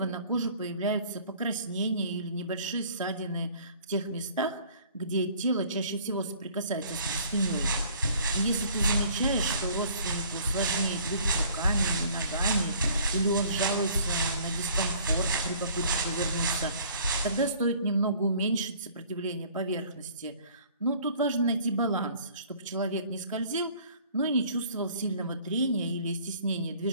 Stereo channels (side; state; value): both; inverted; correlation -0.55